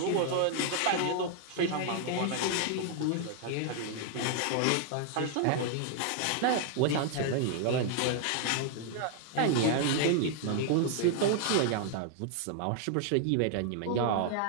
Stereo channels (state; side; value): different; both; correlation 0.00